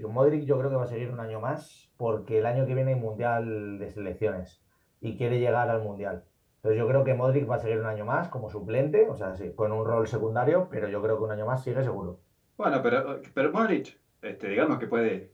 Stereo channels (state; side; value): identical; both; correlation 1.00